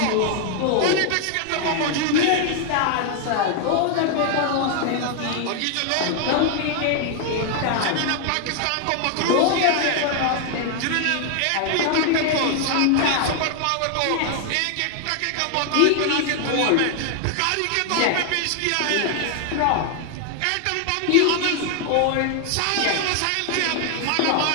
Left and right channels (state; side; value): different; both; correlation 0.00